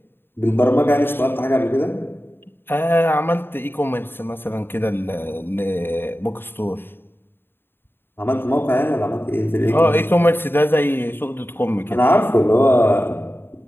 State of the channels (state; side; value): late; right; 0.10 ms